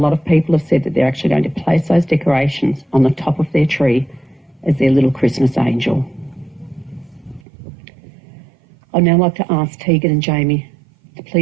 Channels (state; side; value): drops out; left; at 7.4 s